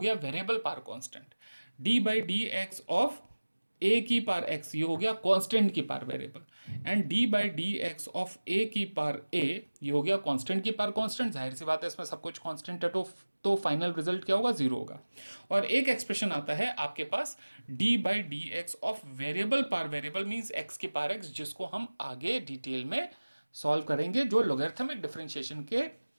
variable power constant, d by d x of a की पावर एक्स, ये हो गया कांस्टेंट की power variable, and d by d x of a की पावर ए, ये हो गया कांस्टेंट की पावर कांस्टेंट। जाहिर सी बात है इसमें सब कुछ कांस्टेंट है, तो फाइनल रिजल्ट क्या होगा, जीरो होगा। और एक एक्सप्रेशन आता है आपके पास d by d x of variable power variable, means x की पावर एक्स, जिसको हम आगे डिटेल में सॉल्व करेंगे, जो लॉगरिथमिक डिफरेंशिएशन के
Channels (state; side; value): inverted; both; correlation -1.00